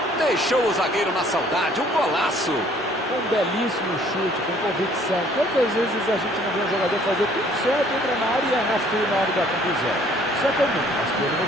Deixou o zagueiro na saudade, um golaço. Um belíssimo chute, com convicção. Quantas vezes a gente não vê um jogador fazer tudo certo, entra na área e erra feio na hora da conclusão. Isso é comum, mas que ele não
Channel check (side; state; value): both; normal; correlation 0.59